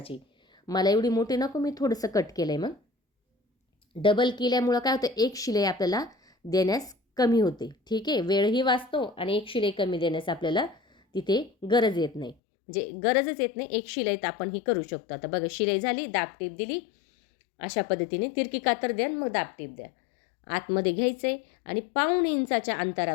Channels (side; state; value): right; drops out; at 12.4 s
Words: मला एवढी मोठी नको, मी थोडंसं कट केलं आहे. मग डबल केल्यामुळं काय होतं, एक शिलाई आपल्याला देण्यास कमी होते. ठीक आहे, वेळही वाचतो आणि एक शिलाई कमी देण्यास आपल्याला तिथे गरज येत नाही, म्हणजे गरजच येत नाही. एक शिलाईत आपण ही करू शकतो. आता बघा शिलाई झाली, दाब टीप दिली, अशा पद्धतीने तिरकी कातर द्या, मग दाब टीप द्या. आतमध्ये घ्यायचं आहे आणि 1.5 इंचाच्या